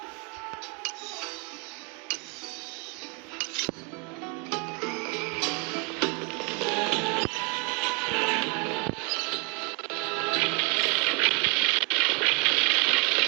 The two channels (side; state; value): left; quieter; 34.0 dB